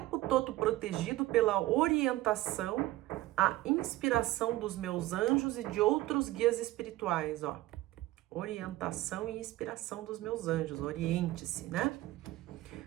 todo protegido pela orientação, a inspiração dos meus anjos e de outros guias espirituais, ó. Orientação e inspiração dos meus anjos, oriente-se, né?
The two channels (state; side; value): quieter; left; 17.1 dB